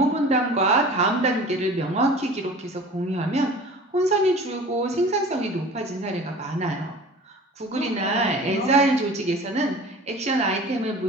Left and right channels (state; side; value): normal; both; correlation 0.41